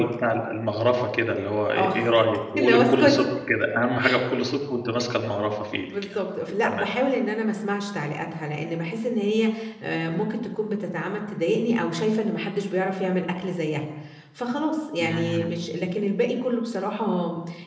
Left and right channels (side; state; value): both; identical; correlation 1.00